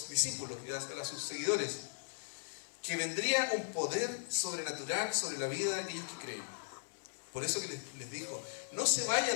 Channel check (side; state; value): right; silent; 53 dB below the other